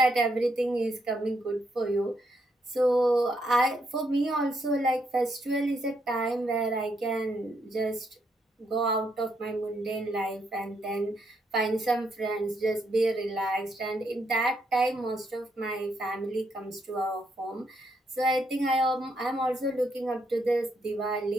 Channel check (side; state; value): both; normal; correlation 0.76